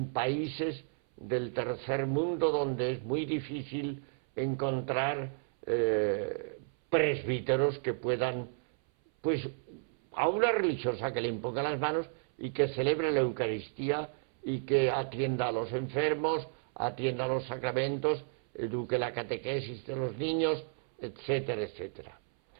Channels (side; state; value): left; silent; 56 dB below the other